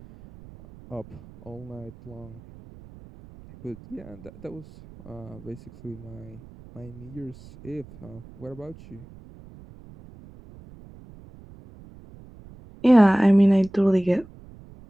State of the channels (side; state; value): right; noise; rumble, 20 dB below the sound